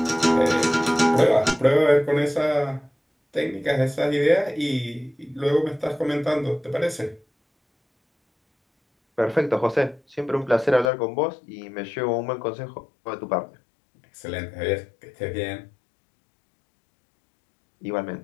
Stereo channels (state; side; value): drops out; right; at 10.9 s